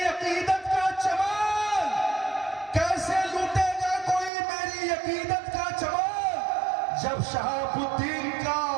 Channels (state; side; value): drops out; left; at 4.3 s